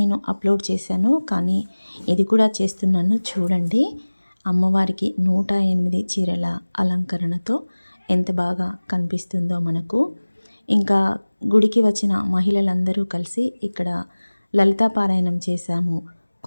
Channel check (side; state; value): both; inverted; correlation -1.00